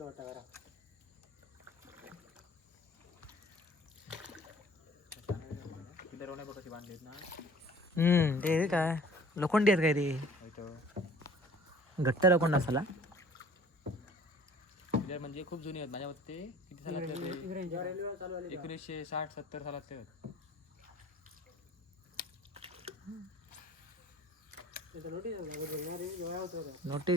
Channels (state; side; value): normal; both; correlation 0.49